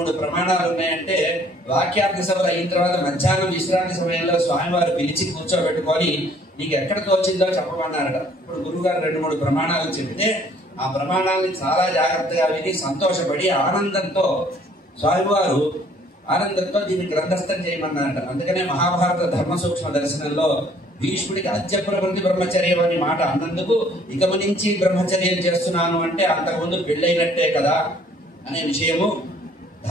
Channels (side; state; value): both; normal; correlation 0.59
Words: ప్రమాణాలు ఉన్నాయంటే వాక్యార్థ సభలు అయిన తర్వాత మధ్యాహ్నం విశ్రాంతి సమయంలో స్వామివారు పిలిచి కూర్చోబెట్టుకొని నీకు ఎక్కడ తోచిందో చెప్పమన్నారట. ఇప్పుడు గురువు గారు 2-3 ప్రమాణాలు చెప్తే ఆ ప్రమాణాలని చాలా జాగ్రత్తగా విని సంతోషపడి ఆనందంతో దీన్ని గ్రంథస్థం చేయమన్నారట. అందుకనే మహాభారత ధర్మ సూక్ష్మ దర్శనంలో భీష్ముడికి అద్య ప్రవృత్తి బ్రహ్మచర్యం అని మాట అన్నందుకు ఇకము నుంచి బ్రహ్మచర్యం చేస్తున్నాను అంటే అంతకుముందు పెళ్ళైనట్టే కదా అనే విషయము.